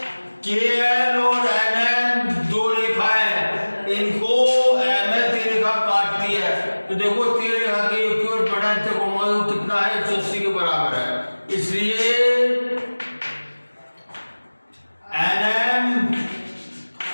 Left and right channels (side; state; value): both; inverted; correlation -1.00